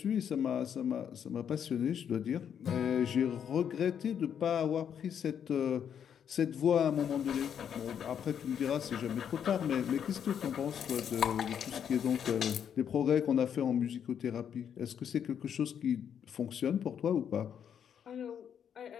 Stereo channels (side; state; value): right; quieter; 8.4 dB